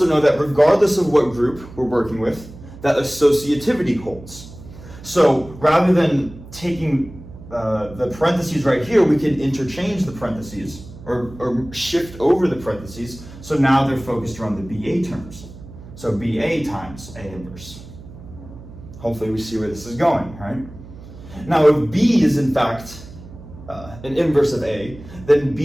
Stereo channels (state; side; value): noise; right; hum, 17 dB below the sound